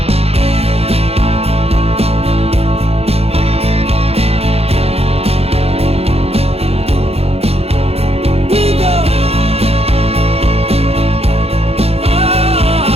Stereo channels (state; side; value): late; left; 0.29 ms